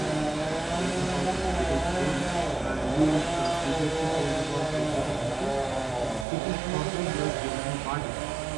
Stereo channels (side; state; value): left; drops out; at 6.2 s